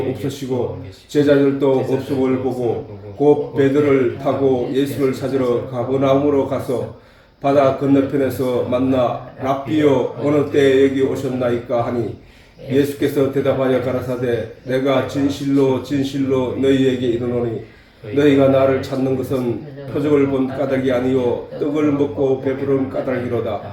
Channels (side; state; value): both; identical; correlation 1.00